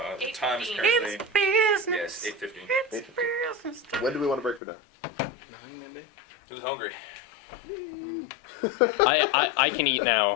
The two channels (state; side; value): drops out; right; at 4.6 s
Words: time is 8:15. currently... business. Yes, 8:15. It's business time. When do we want to break for dinner? 9 maybe? Who's hungry? I can eat